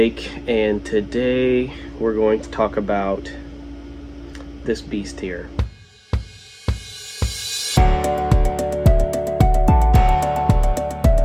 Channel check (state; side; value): identical; both; correlation 1.00